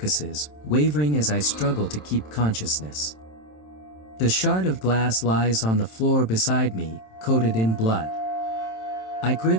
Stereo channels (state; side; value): late; right; 27 ms